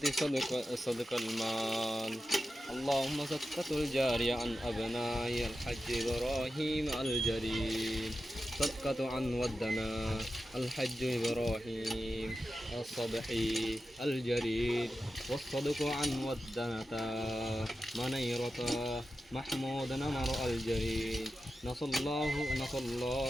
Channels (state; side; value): normal; both; correlation 0.92